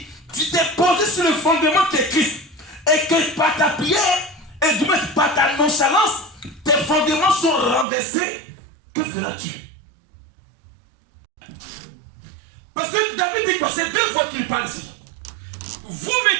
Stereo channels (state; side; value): drops out; left; at 7.9 s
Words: tu t'es posé sur le fondement de Christ, et que par ta prière, et du moins par ta nonchalance, tes fondements sont renversés, que feras-tu? Parce que David dit quoi? C'est 2 fois qu'il parle ici. Vous